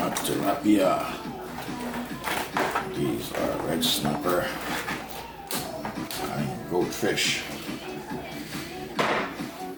tilapia. These are red snapper and goldfish.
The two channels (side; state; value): both; identical; correlation 1.00